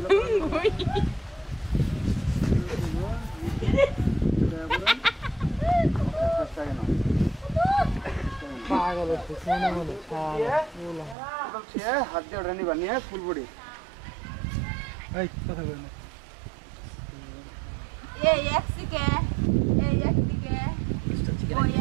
হুঙ্গুই পাগল হচ্ছে মনে মনে হাত দিয়ে ওটা নিবা নিয়ে ফুল বডি এই কথা বল না এই একদিকে ওই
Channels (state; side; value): drops out; left; at 11.2 s